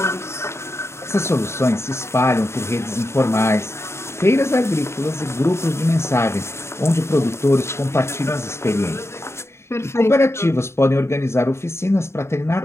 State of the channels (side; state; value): right; late; 0.13 ms